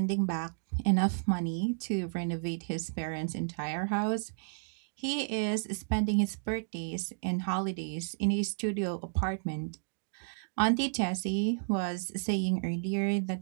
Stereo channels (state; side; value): silent; left; digital silence